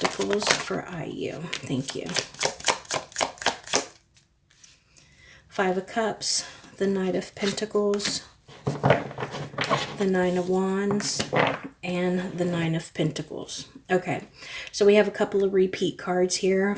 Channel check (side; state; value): both; identical; correlation 1.00